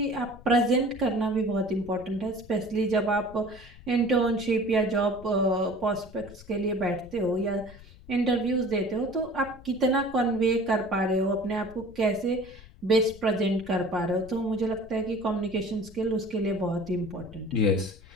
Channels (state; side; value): noise; left; rumble, 20 dB below the sound